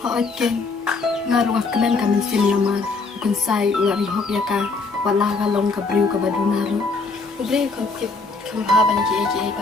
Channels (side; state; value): right; quieter; 4.0 dB